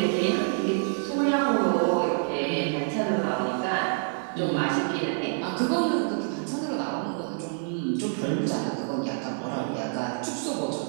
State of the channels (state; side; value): silent; left; 60 dB below the other